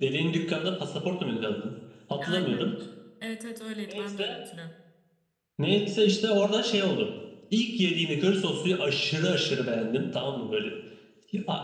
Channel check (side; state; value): both; identical; correlation 1.00